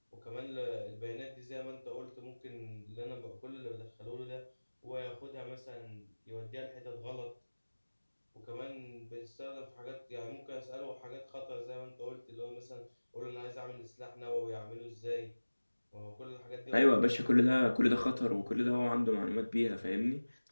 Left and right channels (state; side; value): inverted; both; correlation -1.00